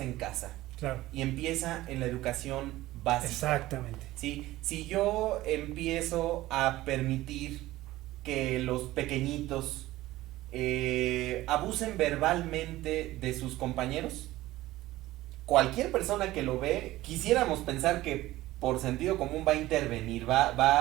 en casa. Claro. Y empieza en la educación básica. Exactamente. ¿Sí? Si yo empiezo a permitir que los pequeñitos abusen verbalmente de sus compañeros? Cualquier persona que lo ve, quisiéramos pensar que por sentido común va a intervenir,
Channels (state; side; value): quieter; left; 16.7 dB